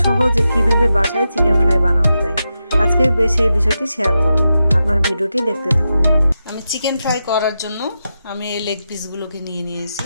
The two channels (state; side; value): inverted; both; correlation -0.88